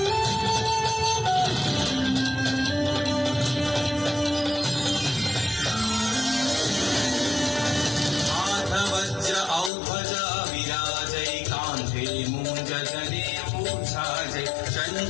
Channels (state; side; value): drops out; right; at 9.7 s